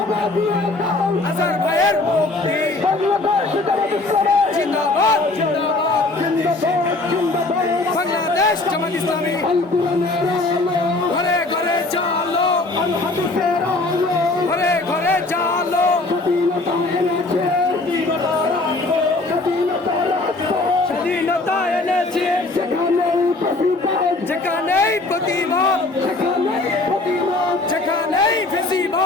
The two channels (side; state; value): right; quieter; 3.1 dB